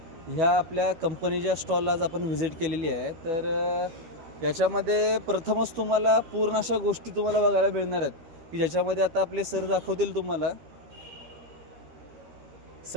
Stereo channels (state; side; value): late; left; 12 ms